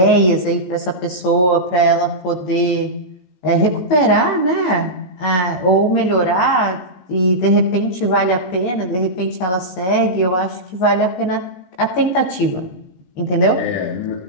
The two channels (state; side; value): late; right; 17 ms